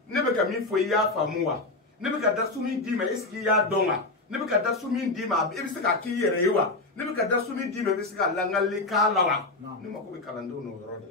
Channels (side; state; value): right; quieter; 3.1 dB